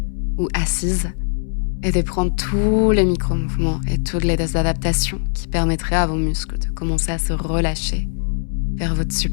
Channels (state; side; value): silent; right; 62 dB below the other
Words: ou assise, et de prendre tous les micro-mouvements et toutes les adaptations qui permettraient à vos muscles de commencer à se relâcher vers votre